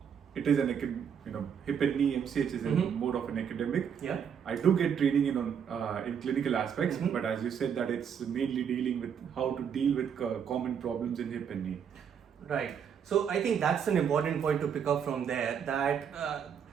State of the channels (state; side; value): quieter; left; 7.7 dB